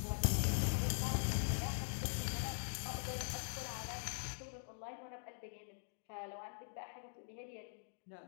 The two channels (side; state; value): right; silent; digital silence